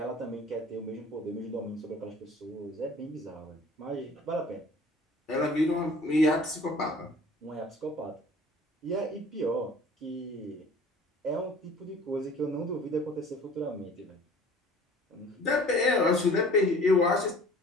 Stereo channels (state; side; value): normal; both; correlation 0.48